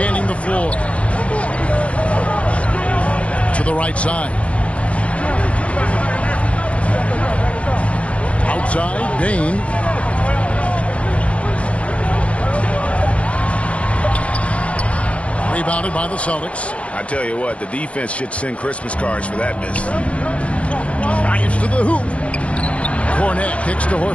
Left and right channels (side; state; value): right; late; 0.063 ms